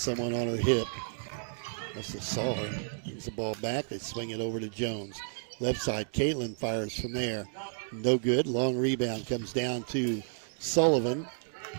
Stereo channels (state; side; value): silent; left; digital silence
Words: on her hip. Must have saw her. Brings the ball back. They swing it over to Jones. Left side, Caitlin fires from there. No good. Long rebound comes down to Sullivan.